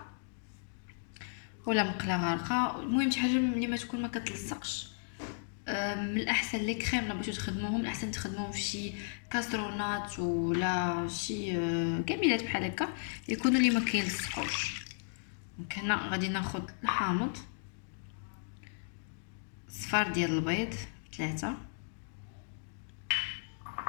ولا مقله غارقه، المهم شي حاجه اللي ما تكون ما كتلصقش. من الاحسن لي كريم لا بغيتو تخدموهم، الاحسن تخدموهم في شي كاسرونات ولا شي كميلات بحال هكا يكونوا اللي ما كيلصقوش. دونك هنا غادي ناخذ الحامض، صفار ديال البيض 3،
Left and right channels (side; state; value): right; silent; digital silence